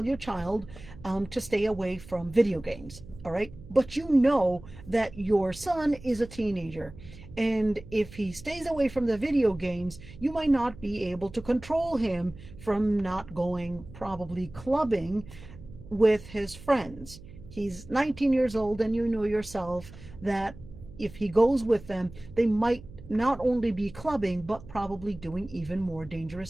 stay away from video games, all right? But you know that your son is a teenager, and if he stays away from the video games, you might not be able to control him from not going probably clubbing with his friends. He's 19 years old, and you know yourself that if he goes with them, they might not only be clubbing, but probably doing even more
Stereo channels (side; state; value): right; noise; hum, 17 dB below the sound